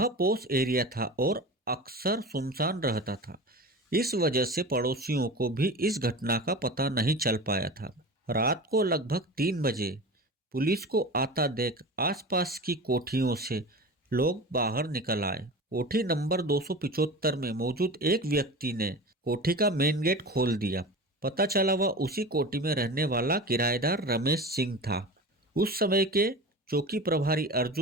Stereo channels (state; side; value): normal; both; correlation 0.32